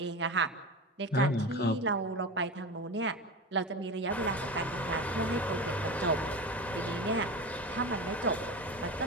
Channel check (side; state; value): both; normal; correlation 0.27